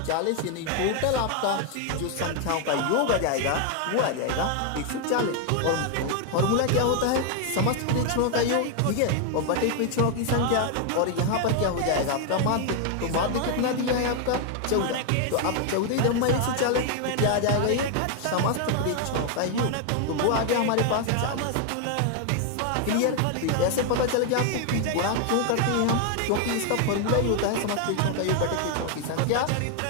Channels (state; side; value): different; both; correlation 0.00